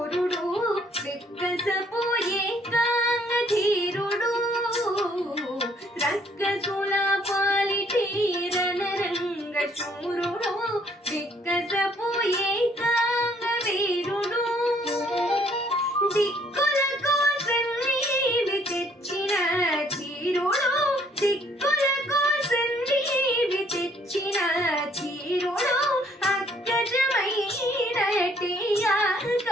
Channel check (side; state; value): both; normal; correlation 0.64